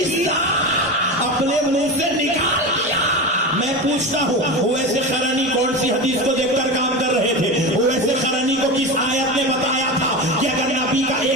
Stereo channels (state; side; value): normal; both; correlation 0.24